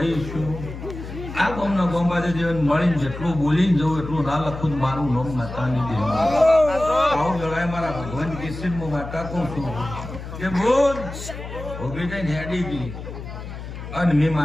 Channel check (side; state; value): left; noise; hum, 10 dB below the sound